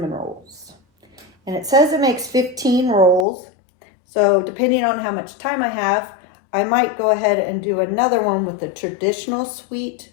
rolls. And it says it makes 15 rolls. So depending on how much time I have, I might go ahead and do another one with the traditional sweet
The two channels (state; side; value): drops out; right; at 3.2 s